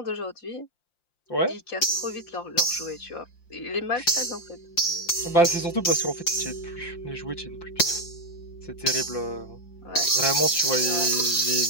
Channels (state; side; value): late; right; 5.8 ms